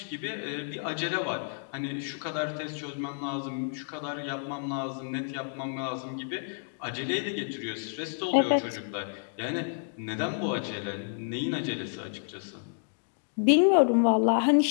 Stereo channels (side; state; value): right; silent; digital silence